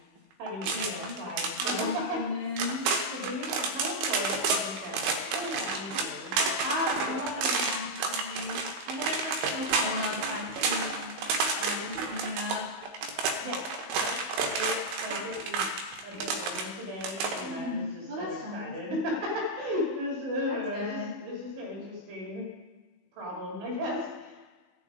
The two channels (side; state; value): left; late; 16 ms